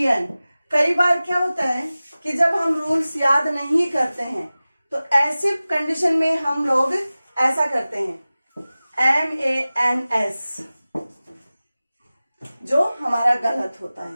कई बार क्या होता है कि जब हम रूल्स याद नहीं करते हैं तो ऐसे कंडीशन में हम लोग ऐसा करते हैं MANS, जो हमारा गलत होता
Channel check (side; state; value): both; inverted; correlation -0.97